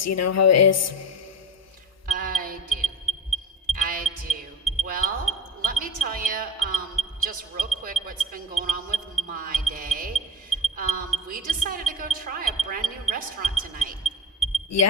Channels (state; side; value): normal; both; correlation 0.26